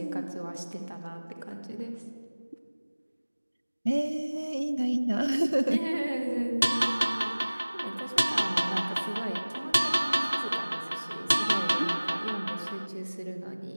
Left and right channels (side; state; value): both; inverted; correlation -1.00